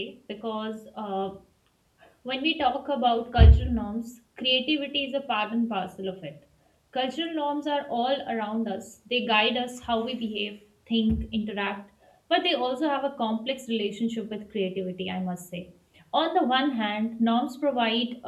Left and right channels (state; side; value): identical; both; correlation 1.00